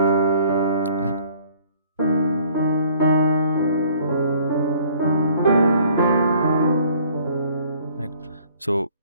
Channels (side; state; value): both; inverted; correlation -0.57